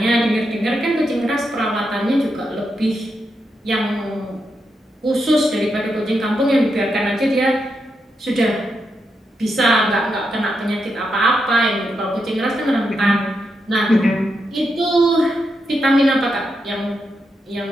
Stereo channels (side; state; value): both; normal; correlation 0.84